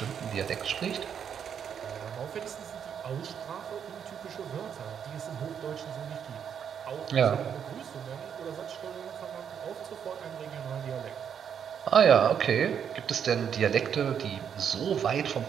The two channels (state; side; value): quieter; left; 8.0 dB